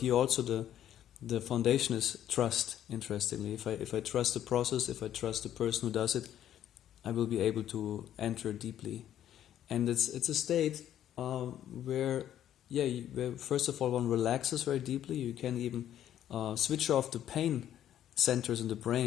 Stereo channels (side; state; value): right; quieter; 11.1 dB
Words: also the foundation is trust, interestingly. If I trust the process, if I trust the person who does it, I will be able to enter deeply. And it's a state where first of all one relaxes very deeply. You can even switch off the pain centers in the